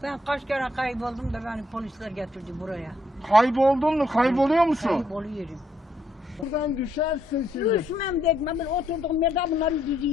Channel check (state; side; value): normal; both; correlation 0.73